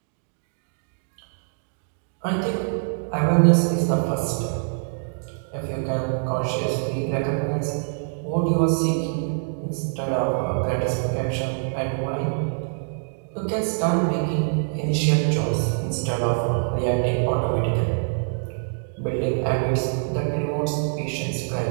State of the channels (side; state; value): left; silent; digital silence